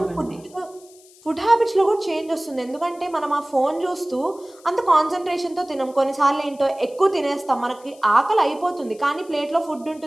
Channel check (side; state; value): left; noise; hiss, 26 dB below the sound